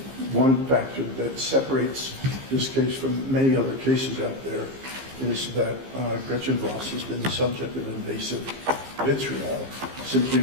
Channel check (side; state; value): left; late; 15 ms